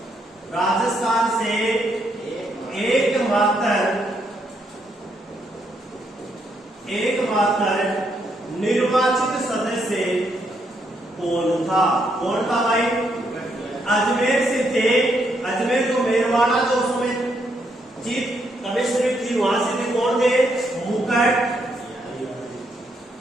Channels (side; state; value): both; normal; correlation 0.76